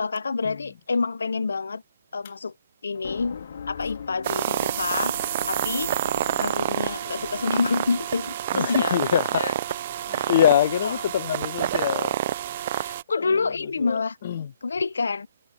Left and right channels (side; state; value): both; inverted; correlation -0.66